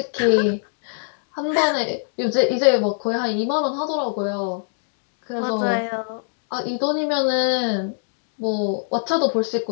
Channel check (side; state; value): right; silent; digital silence